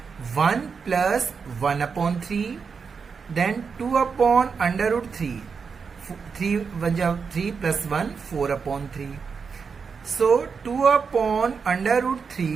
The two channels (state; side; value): quieter; left; 5.6 dB